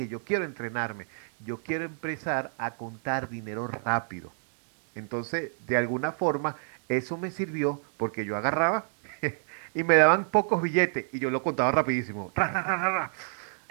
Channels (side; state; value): left; silent; 59 dB below the other